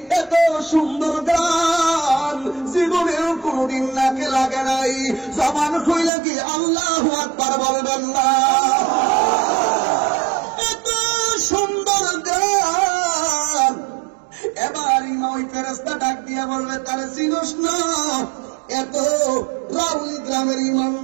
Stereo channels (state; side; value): drops out; left; at 6.1 s